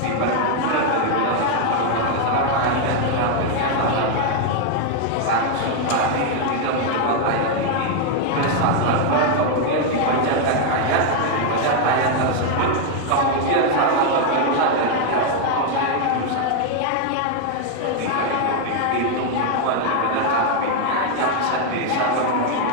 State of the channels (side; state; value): both; different; correlation 0.00